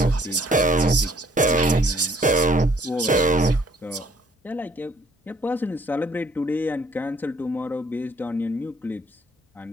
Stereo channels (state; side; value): normal; both; correlation 0.62